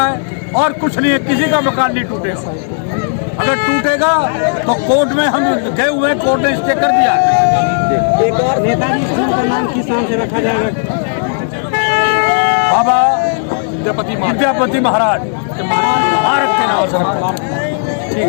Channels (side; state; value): right; silent; digital silence